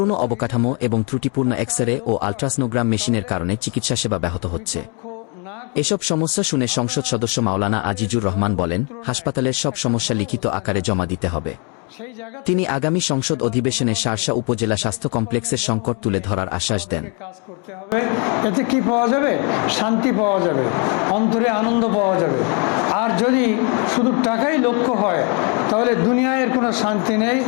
অবকাঠামো এবং ত্রুটিপূর্ণ এক্স-রে ও আল্ট্রাসনোগ্রাম মেশিনের কারণে চিকিৎসা সেবা ব্যাহত হচ্ছে। এসব সমস্যা শুনে সংসদ সদস্য মাওলানা আজিজুর রহমান বলেন, হাসপাতালের সব সমস্যা লিখিত আকারে জমা দিতে হবে। তিনি আগামী সংসদ অধিবেশনে শার্শা উপজেলা স্বাস্থ্য কমপ্লেক্সের সংকট তুলে ধরার আশ্বাস দেন। এতে কি পাওয়া যাবে? শান্তি পাওয়া যাবে, অন্তরে আনন্দ পাওয়া যাবে। আর যদি শুধু টাকাই লক্ষ্য হয় তাহলে দুনিয়ায় কোনো শান্তি নেই।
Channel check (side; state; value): right; quieter; 34.5 dB